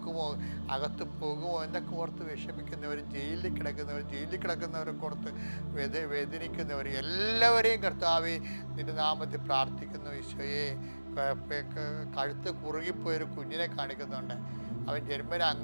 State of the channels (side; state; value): both; inverted; correlation -1.00